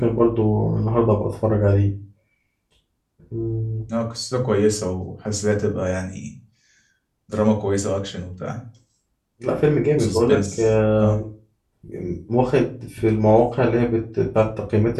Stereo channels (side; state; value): both; identical; correlation 1.00